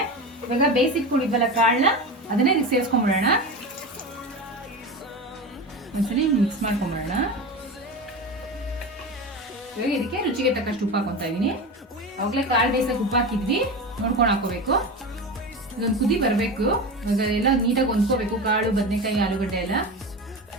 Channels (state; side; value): normal; both; correlation 0.25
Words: ಇವಾಗ ಬೇಯಿಸಿಟ್ಕೊಂಡಿದ್ವಲ್ಲ ಕಾಳನ್ನ, ಅದನ್ನ ಇದಕ್ಕೆ ಸೇರಿಸ್ಕೊಂಡ್ಬಿಡೋಣ. ಒಂದ್ಸಲಿ ಮಿಕ್ಸ್ ಮಾಡ್ಕೊಂಡ್ಬಿಡೋಣ. ಇವಾಗ ಇದಕ್ಕೆ ರುಚಿಗೆ ತಕ್ಕಷ್ಟು ಉಪ್ಪು ಹಾಕೊತಾ ಇದೀನಿ. ಅವಾಗಲೇ ಕಾಳು ಬೇಯಿಸಕ್ಕೆ ಉಪ್ಪು ಹಾಕಿದ್ವಿ, ನೋಡ್ಕೊಂಡು ಹಾಕೋಬೇಕು. ಇದೊಂದು ಕುದಿ ಬರಬೇಕು. ಇವಾಗ ಎಲ್ಲ ನೀಟಾಗಿ ಹೊಂದ್ಕೋಬೇಕು, ಕಾಳು, ಬದನೆಕಾಯಿ, ಆಲೂಗಡ್ಡೆ ಎಲ್ಲ.